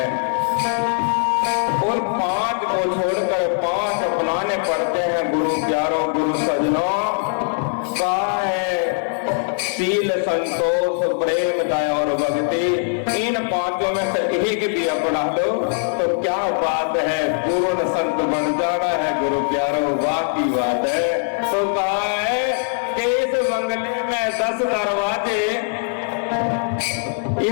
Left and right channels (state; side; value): silent; right; 62 dB below the other